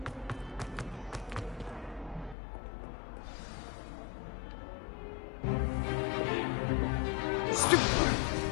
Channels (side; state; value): right; drops out; at 2.4 s